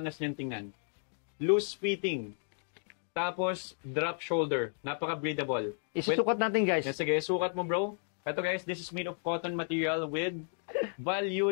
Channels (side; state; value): right; silent; 56 dB below the other